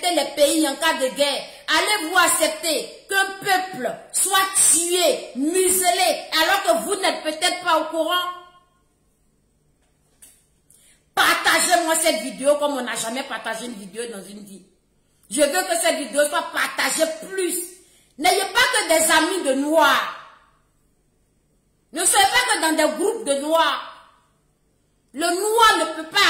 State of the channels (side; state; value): both; identical; correlation 1.00